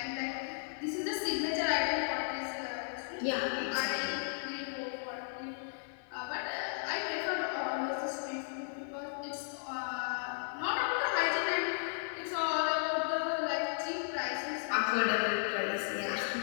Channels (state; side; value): silent; right; 54 dB below the other